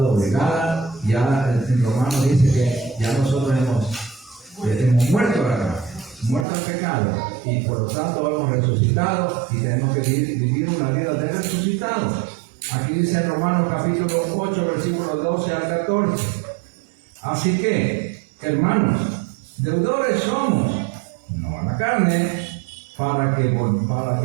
ya en Romanos dice que ya nosotros hemos muerto a la carne, muerto al pecado, y por lo tanto hemos resucitado y tenemos que vivir una vida de resucitados. Aquí dice en Romanos capítulo 8, versículos 12 al 14. Así que, hermanos, deudores somos, no a la carne, para que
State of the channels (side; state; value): left; drops out; at 6.5 s